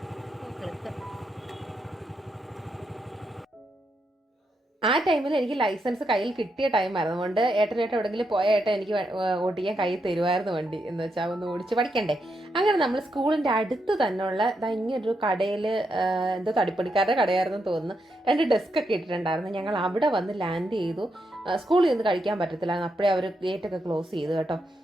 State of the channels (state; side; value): normal; both; correlation 0.82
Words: ആ ടൈമിൽ എനിക്ക് ലൈസൻസ് കയ്യിൽ കിട്ടിയ ടൈമായിരുന്നു. അതുകൊണ്ട് ഏട്ടനായിട്ട് എവിടെയെങ്കിലും പോയ ഏട്ടൻ എനിക്ക് ഓടിക്കാൻ കയ്യിൽ തരുമായിരുന്നു വണ്ടി, എന്ന് വെച്ചാൽ ഒന്ന് ഓടിച്ച് പഠിക്കണ്ടേ. അങ്ങനെ നമ്മൾ സ്കൂളിൻ്റെ അടുത്ത് തന്നെയുള്ള ഇങ്ങനൊരു കടയിൽ, എന്തോ തടിപ്പണിക്കാരുടെ കടയായിരുന്നു തോന്നുന്നു, 2 ഡെസ്ക് ഒക്കെ ഇട്ടിട്ടുണ്ടായിരുന്നു. ഞങ്ങൾ അവിടെ വന്ന് ലാൻഡ് ചെയ്തു. സ്കൂളിൽ നിന്ന് കഴിക്കാൻ പറ്റത്തില്ലായിരുന്നു, അപ്പോഴേ അവർ ഗേറ്റൊക്കെ ക്ലോസ് ചെയ്തു കേട്ടോ.